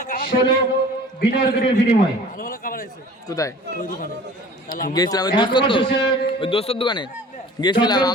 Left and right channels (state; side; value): normal; both; correlation 0.45